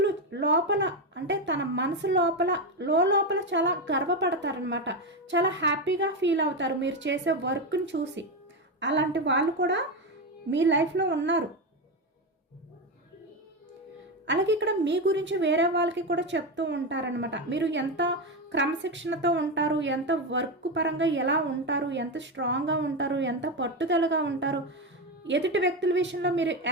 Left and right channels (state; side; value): normal; both; correlation 0.13